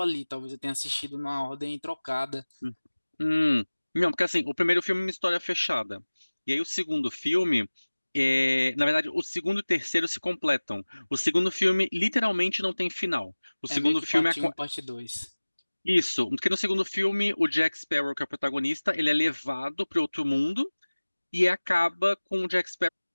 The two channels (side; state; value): both; inverted; correlation -1.00